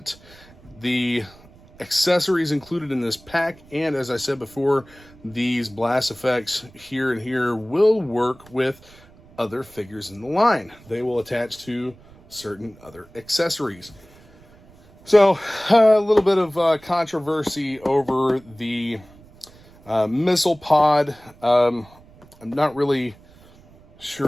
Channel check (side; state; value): right; noise; rumble, 25 dB below the sound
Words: the accessories included in this pack, and as I said before, these blast effects here and here will work with other figures in the line. They will attach to certain other accessories. So a little bit of controversy over the missile pod. I'm not really